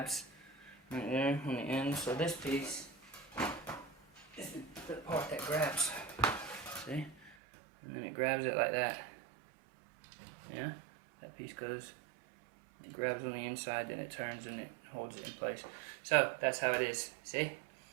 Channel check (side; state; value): left; drops out; at 7.4 s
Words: right there on the end. So this piece is the part that grabs. See? And then it grabs it like that. Yeah? That piece goes, it grabs on the inside, then it turns and it holds it in place. So that's how it is. See?